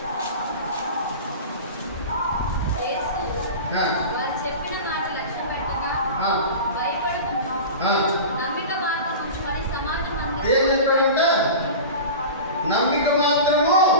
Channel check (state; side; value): inverted; both; correlation -0.31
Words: ఏం చెప్పాడంటే నమ్మిక మాత్రము